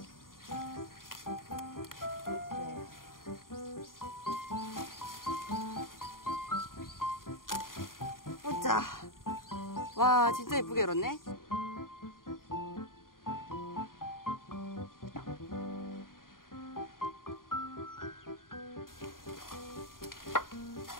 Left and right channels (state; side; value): late; right; 0.91 ms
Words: 보자. 와 진짜 예쁘게 열었네.